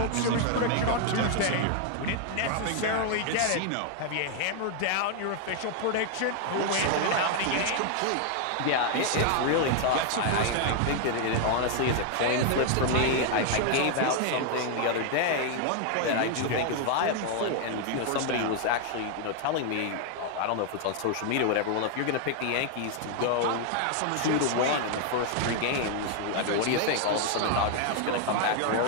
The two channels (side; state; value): both; different; correlation 0.00